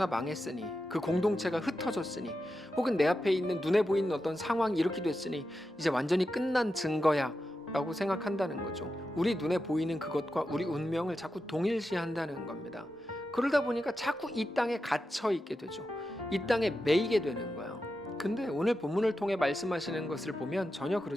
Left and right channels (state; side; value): normal; both; correlation 0.89